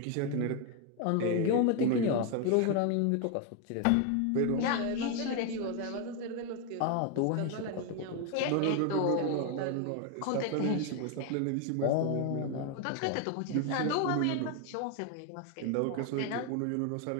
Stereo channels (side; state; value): both; different; correlation 0.01